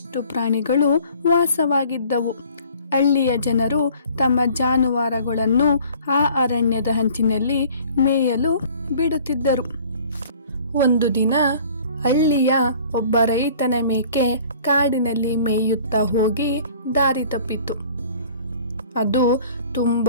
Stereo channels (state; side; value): inverted; both; correlation -0.51